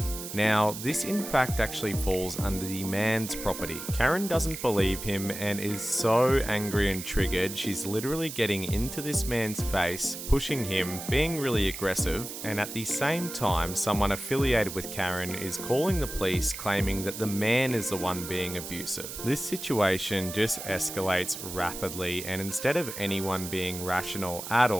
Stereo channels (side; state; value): right; noise; hiss, 9 dB below the sound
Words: Now, this in fact actually falls under the man's property. Karen doesn't believe him and is so angry and triggered, she's literally getting into this man's face, pushing him, being really aggressive, and at the same time, someone affiliated with Karen is calling the police, claiming that the man is the one being abusive. This situation just escalates rapidly, and instead of anyone being rational at